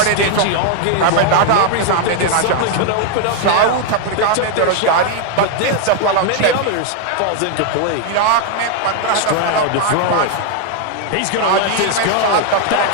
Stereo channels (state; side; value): different; both; correlation 0.00